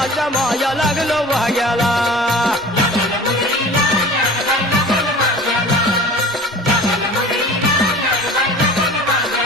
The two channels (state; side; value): normal; both; correlation 0.41